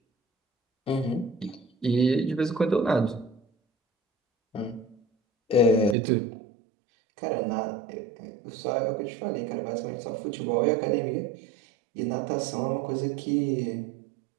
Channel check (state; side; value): drops out; left; at 6.0 s